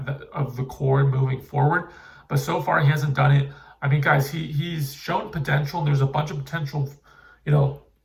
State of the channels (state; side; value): identical; both; correlation 1.00